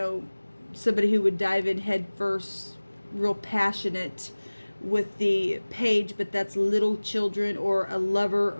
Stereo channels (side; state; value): both; inverted; correlation -1.00